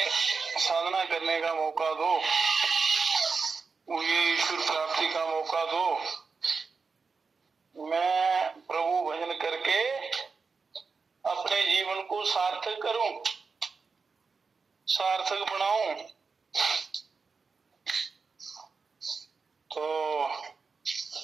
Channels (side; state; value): left; quieter; 4.8 dB